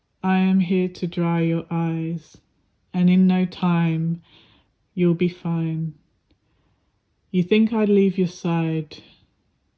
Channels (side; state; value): both; identical; correlation 1.00